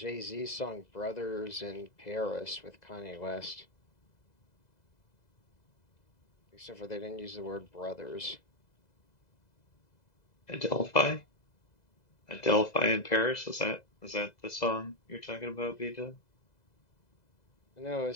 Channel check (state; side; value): late; right; 2.0 ms